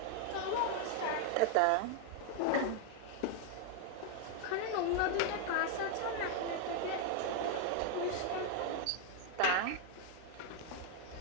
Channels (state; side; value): different; both; correlation 0.00